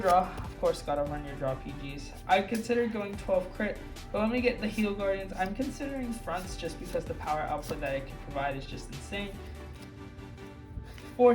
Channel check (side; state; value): both; identical; correlation 1.00